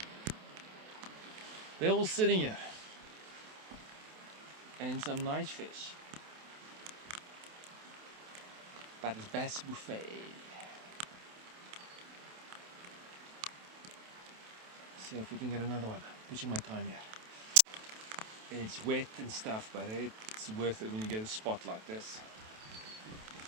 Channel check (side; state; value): left; late; 28 ms